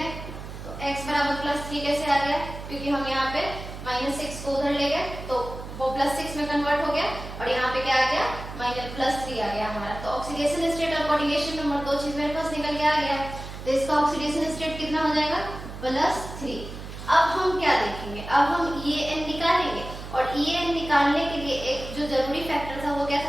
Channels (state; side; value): noise; right; hum, 11 dB below the sound